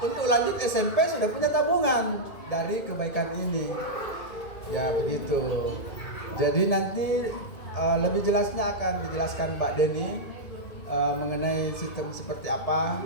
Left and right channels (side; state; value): right; late; 2.2 ms